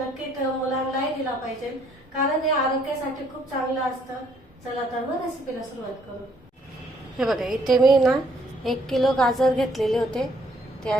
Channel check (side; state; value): both; normal; correlation 0.66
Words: मुलांनाही दिला पाहिजे, कारण हे आरोग्यासाठी खूप चांगलं असतं। चला तर मग रेसिपीला सुरुवात करू। हे बघा, इथे मी ना 1 किलो गाजर घेतलेले होते, ते